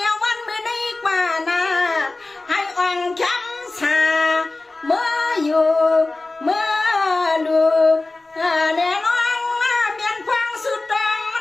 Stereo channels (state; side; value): quieter; right; 3.2 dB